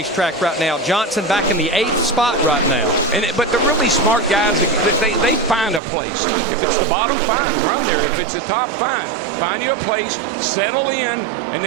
right now. Johnson back in the 8th spot right now. But the really smart guys, they find a place. If it's the bottom, fine, run there. If it's the top, fine. Find you a place, settle in, and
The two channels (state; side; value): drops out; left; at 5.8 s